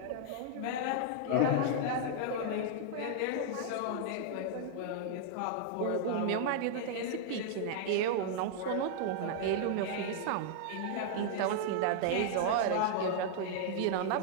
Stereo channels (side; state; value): both; different; correlation -0.01